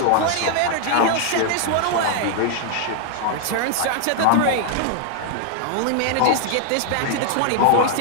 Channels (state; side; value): different; both; correlation 0.00